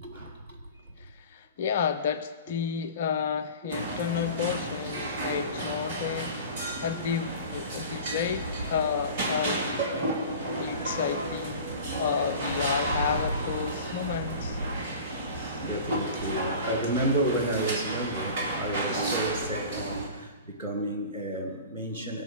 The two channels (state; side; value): inverted; both; correlation -0.38